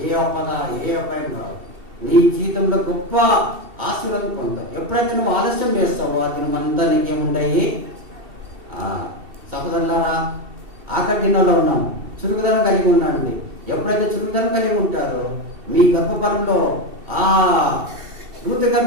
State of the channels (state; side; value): late; left; 2.7 ms